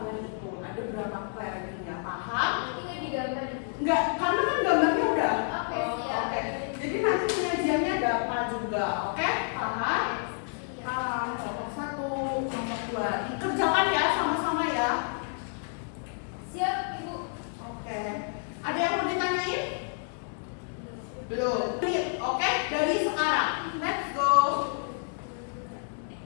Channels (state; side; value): silent; right; 58 dB below the other